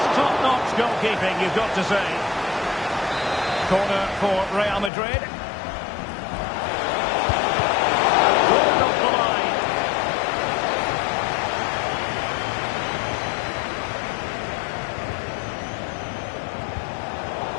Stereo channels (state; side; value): drops out; right; at 4.9 s